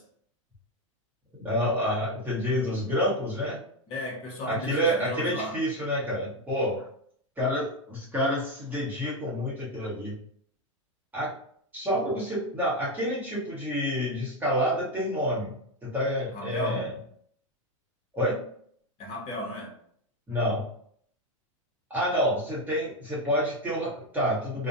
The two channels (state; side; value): normal; both; correlation 0.10